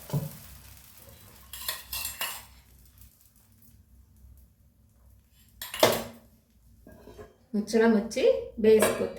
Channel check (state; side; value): identical; both; correlation 1.00